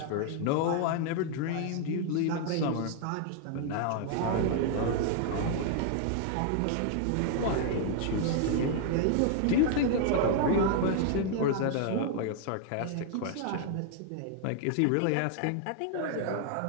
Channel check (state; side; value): different; both; correlation 0.00